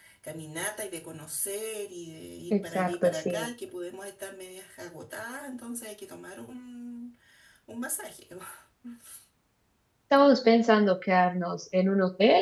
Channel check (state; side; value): identical; both; correlation 1.00